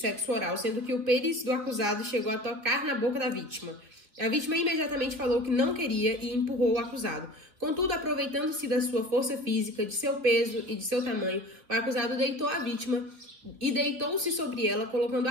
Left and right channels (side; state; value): left; late; 2.4 ms